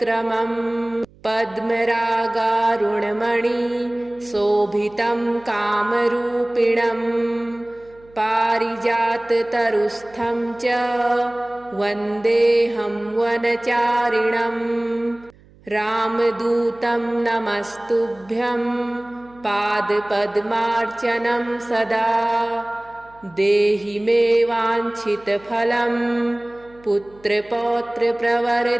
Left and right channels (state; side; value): noise; right; hum, 27 dB below the sound